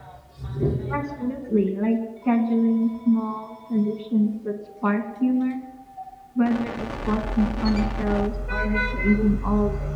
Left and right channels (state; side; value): identical; both; correlation 1.00